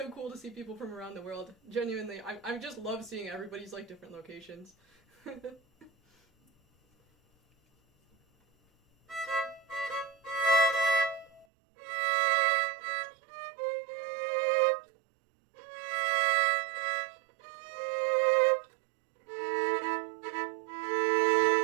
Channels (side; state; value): left; drops out; at 11.5 s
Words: cool to see people from around the world. Genuinely, I just love seeing everybody's, like, different locations.